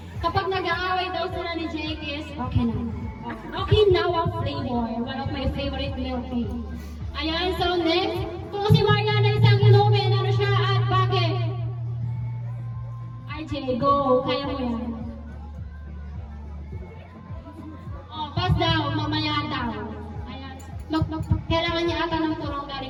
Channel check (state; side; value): identical; both; correlation 1.00